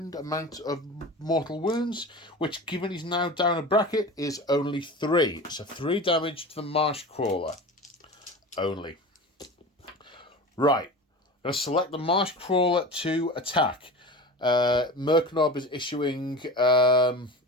amount of mortal wounds, which, given he's now down a bracket, is only 3. So 3 damage to the Marsh Crawler. Only. Right. I'm going to select the Marsh Crawler to attack. Merknob is issuing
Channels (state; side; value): normal; both; correlation 0.32